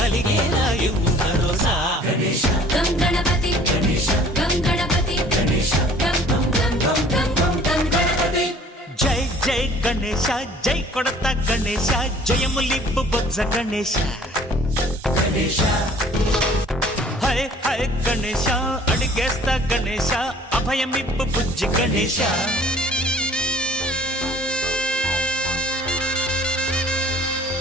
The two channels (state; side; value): normal; both; correlation 0.52